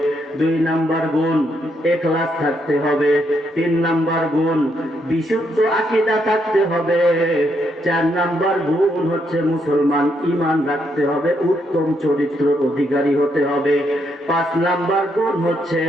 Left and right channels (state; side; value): normal; both; correlation 0.76